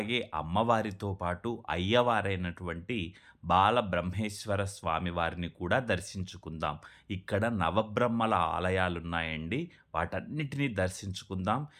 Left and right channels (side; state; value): both; identical; correlation 1.00